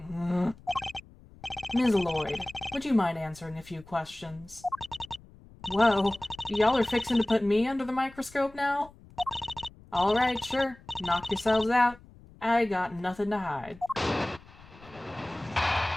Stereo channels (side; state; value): left; noise; rumble, 23 dB below the sound